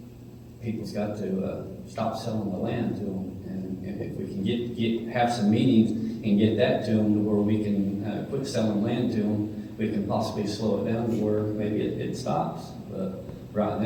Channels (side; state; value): both; identical; correlation 1.00